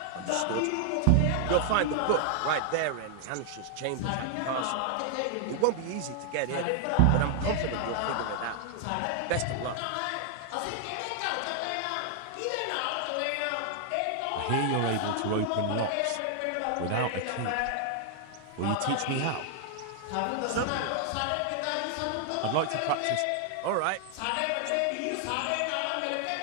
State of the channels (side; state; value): both; different; correlation 0.00